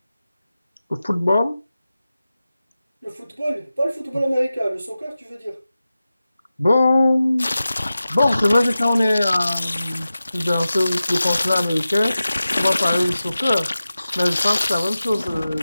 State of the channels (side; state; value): both; inverted; correlation -0.94